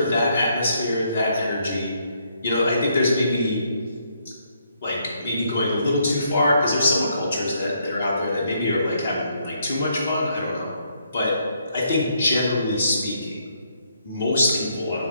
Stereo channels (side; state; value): both; inverted; correlation -0.73